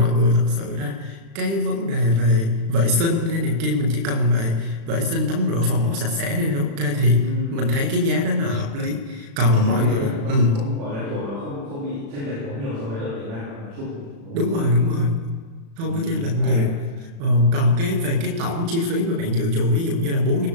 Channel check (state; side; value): late; left; 36 ms